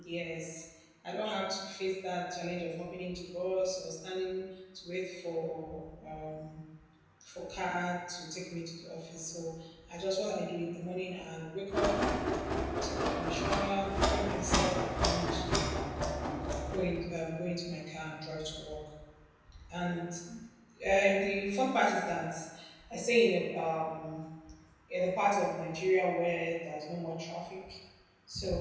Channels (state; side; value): identical; both; correlation 1.00